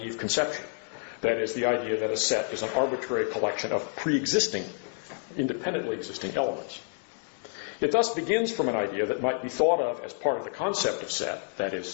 conception. That is, the idea that a set is an arbitrary collection of pre-existing, independently existing elements. It thus begins from an idea that might be thought of as part of the concept of set, that is,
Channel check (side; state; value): right; silent; 59 dB below the other